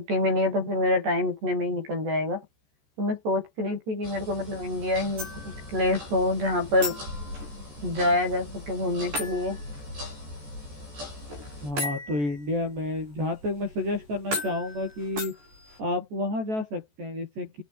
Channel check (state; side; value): late; left; 14 ms